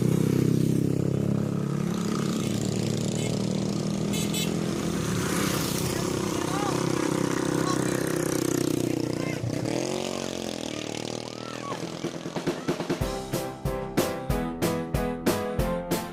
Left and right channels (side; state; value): both; identical; correlation 1.00